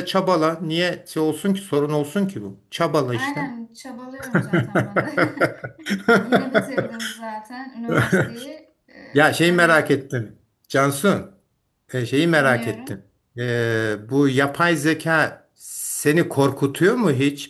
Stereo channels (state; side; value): identical; both; correlation 1.00